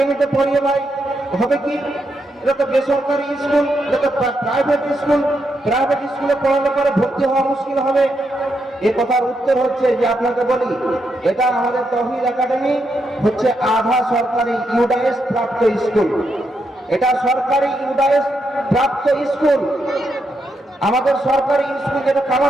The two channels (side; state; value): both; normal; correlation 0.82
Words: পড়িয়ে ভাই হবে কি, এটা তো বেসরকারি স্কুল, এটা তো প্রাইভেট স্কুল, প্রাইভেট স্কুলে পড়ালে পরে ভর্তি হওয়া মুশকিল হবে। এই কথার উত্তর হচ্ছে যে আপনাকে বলি, এটা আমাদের তৌহিদ একাডেমি হচ্ছে আধা সরকারি ইউডাইএস প্রাপ্ত স্কুল, এটা সরকারি ইউডাইএস প্রাপ্ত স্কুল। আমাদের সরকারি স্কুল যেটা